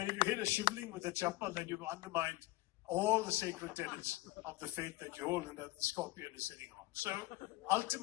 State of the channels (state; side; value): quieter; right; 18.8 dB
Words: if you hit a shivling with a chappal, then you've undermined all the sacred tenets of the faith that you hold and that the scorpion is sitting on. So